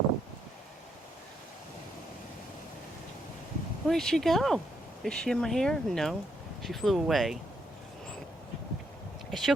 Where'd she go? Is she in my hair? No. She flew away. She'll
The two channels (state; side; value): normal; both; correlation 0.76